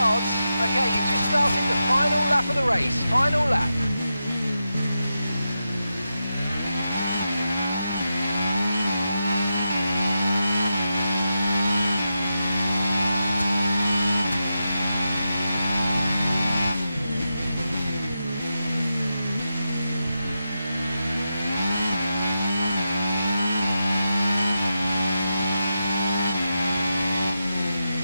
Okay, you've just started the final lap of the race. Final lap.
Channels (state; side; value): inverted; both; correlation -0.88